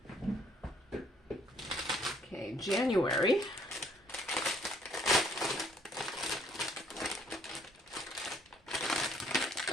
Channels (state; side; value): normal; both; correlation 0.62